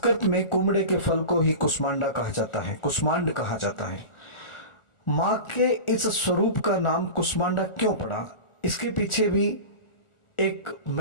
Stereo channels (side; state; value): right; late; 1.4 ms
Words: में कुम्हड़े के फल को ही कुष्मांडा कहा जाता है, कुष्मांड कहा जाता है। माँ के इस स्वरूप का नाम कुष्मांडा क्यों पड़ा, इसके पीछे भी एक